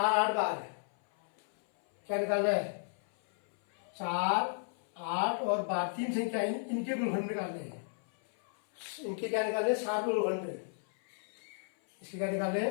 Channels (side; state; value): right; silent; 55 dB below the other